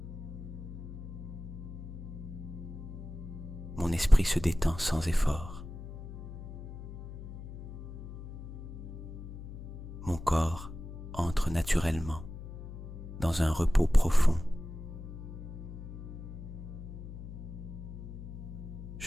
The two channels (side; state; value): left; noise; hum, 10 dB below the sound